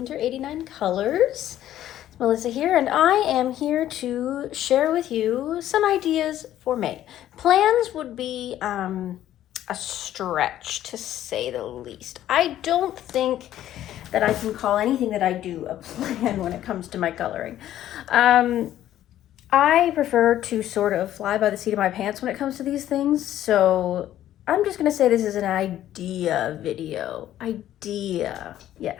89 Colors. It's Melissa here, and I am here to share with you some ideas for May. Plans would be a stretch, to say the least. I don't think that I can call anything that I do a plan when it comes to my coloring. I prefer to sort of fly by the seat of my pants when it comes to these things, so I'm just gonna say this is an idea video. Idea.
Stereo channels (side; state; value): right; quieter; 12.4 dB